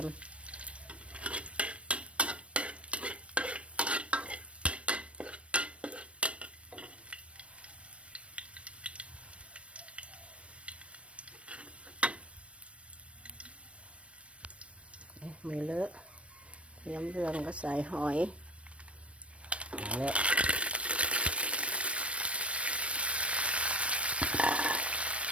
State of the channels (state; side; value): late; left; 0.062 ms